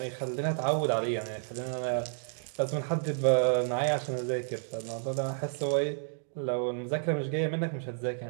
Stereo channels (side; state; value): left; silent; digital silence